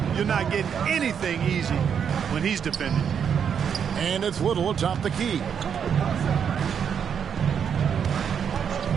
You're not getting anything easy when he's defending. And it's Little atop the key.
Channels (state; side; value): quieter; left; 7.6 dB